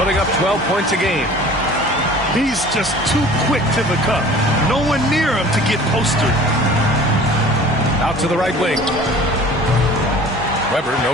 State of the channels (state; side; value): normal; both; correlation 0.45